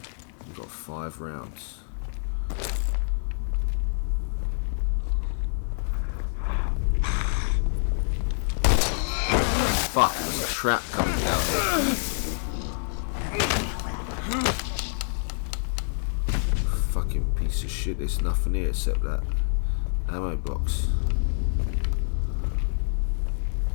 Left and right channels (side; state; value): right; silent; digital silence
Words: We've got 5 rounds. Fuck, there's a trap coming down here. Fucking piece of shit, there's nothing here except that ammo box.